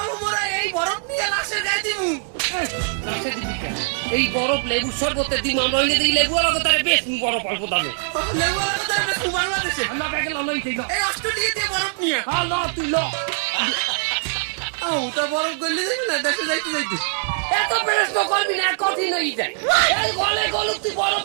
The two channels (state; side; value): silent; left; digital silence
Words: মোরা এই বরফ নিয়ে লাশে দিয়ে দিমু এই বরফ লেবু শরবতে দিম আমরা যদি লেবু আর তারে বেশ বরফ অল্প দামে লেবু আর তো এটা তোমার বাড়িতে আমরা ব্যাগে লই দিই এই অস্ট্রেলিয়াতে বরফ নিয়ে হ্যালো তুই ল ওটা বরফ গলি দিবি না দেশে যাইতে যাইতে এত প্রশ্ন করবি না কঠিন হয়ে যায় এই গলে গলে তুই